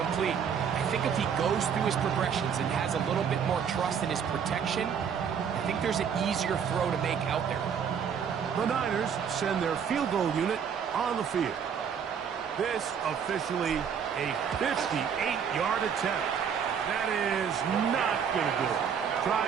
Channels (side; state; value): left; quieter; 7.4 dB